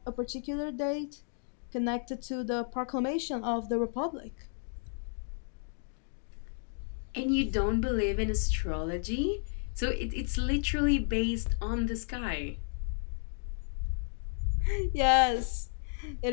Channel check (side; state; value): right; silent; digital silence